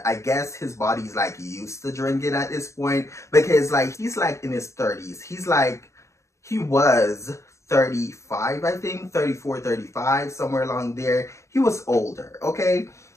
I guess his body's like used to drinking at this point because like he's like in his 30s. He was 35, I think, 34, 35, somewhere along there. He was older, okay?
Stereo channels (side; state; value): right; late; 0.14 ms